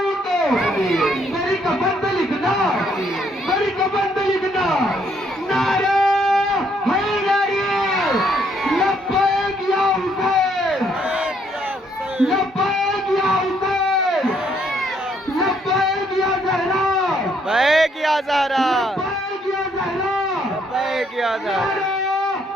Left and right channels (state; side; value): normal; both; correlation 0.69